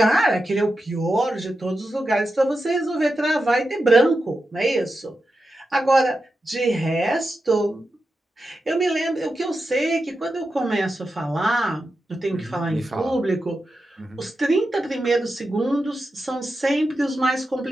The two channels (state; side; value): normal; both; correlation 0.90